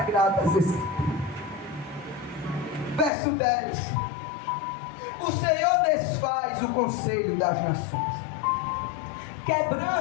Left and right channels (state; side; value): drops out; right; at 3.1 s